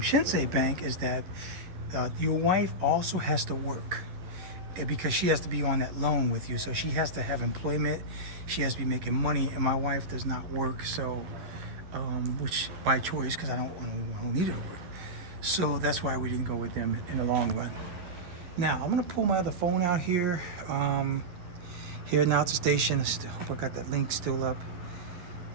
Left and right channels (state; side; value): late; left; 11 ms